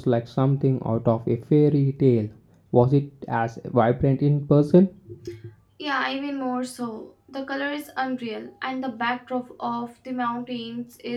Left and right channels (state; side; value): identical; both; correlation 1.00